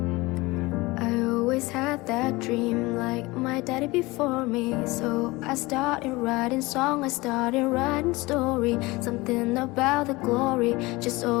Had that dream like my daddy before me. So I started writing song, I started writing story. Something about the glory just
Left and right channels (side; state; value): right; quieter; 22.1 dB